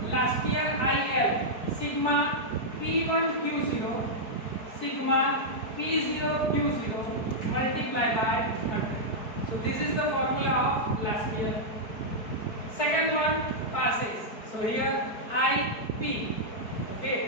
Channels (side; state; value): right; late; 4.7 ms